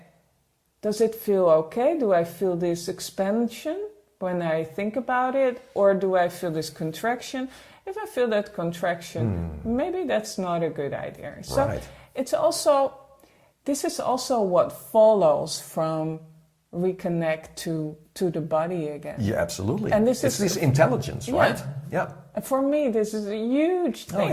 does it feel okay? Do I feel this expansion when I think about it? Or do I feel this contraction? If I feel that contraction, maybe that's not a good idea. So it's also, this is also what follows from Reconnect to the body again. Yeah, absolutely. And this it's this intelligence, right? Yeah. And for me, this is a huge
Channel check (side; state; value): both; identical; correlation 1.00